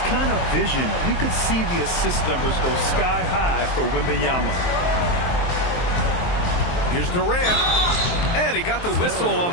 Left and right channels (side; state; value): right; late; 23 ms